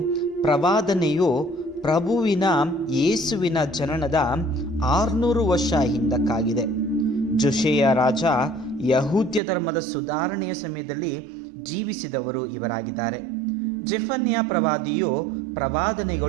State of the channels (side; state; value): left; drops out; at 9.4 s